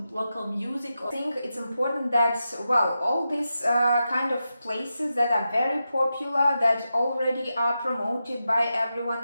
local music. I think it's important that, well, all these kind of places that are very popular, that already are promoted by everyone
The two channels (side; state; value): both; inverted; correlation -0.89